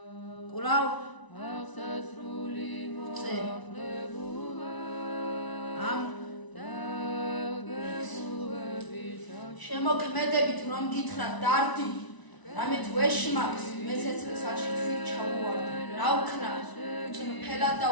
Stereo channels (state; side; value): late; right; 1.0 ms